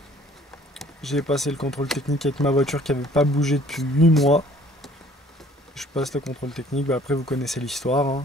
J'ai passé le contrôle technique avec ma voiture qui n'avait pas bougé depuis 8 mois. Je passe le contrôle technique, bah après vous connaissez l'histoire, hein.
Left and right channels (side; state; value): both; normal; correlation 0.55